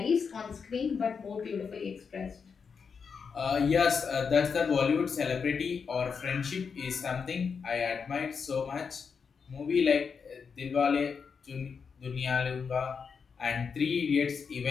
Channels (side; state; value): right; quieter; 5.9 dB